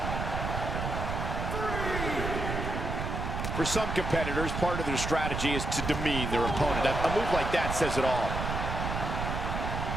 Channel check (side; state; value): right; noise; rumble, 3 dB below the sound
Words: For some competitors, part of their strategy is to demean their opponent. A move like that says it all.